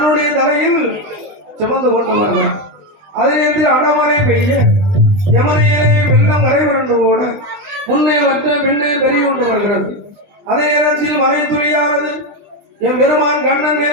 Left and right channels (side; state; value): left; late; 20 ms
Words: தலையில் சுமந்து கொண்டு வருகிறார். அதே நேரத்தில் அடமழை பெய்ய யமுனையிலே வெள்ளம் கரை புரண்டு ஓட